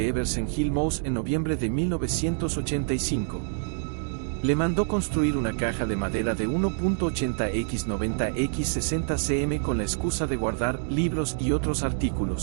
Everson Hill Mouse en noviembre de 1985. Le mandó construir una caja de madera de 1.80 x 90 x 60 cm con la excusa de guardar libros y otros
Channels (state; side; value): silent; left; digital silence